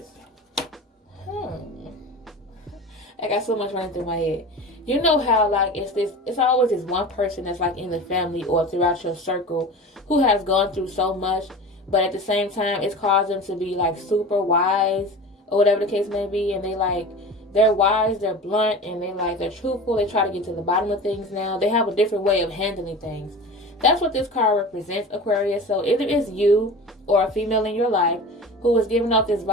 I got so much running through my head. You know how, like, it's always this one person that's, like, in the family or throughout your circle who has gone through so much, but at the same time, it's caused them to be, like, super wise or whatever the case may be, and they're wise, they're blunt, and they're truthful. They try to get to the bottom of things now. They have a different way of handling things. That's what this card represents, Aquarius. So either it's you or a female in your life who is giving off this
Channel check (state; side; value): normal; both; correlation 0.34